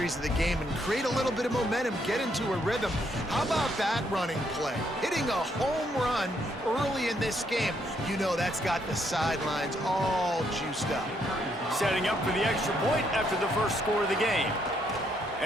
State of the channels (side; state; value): both; normal; correlation 0.73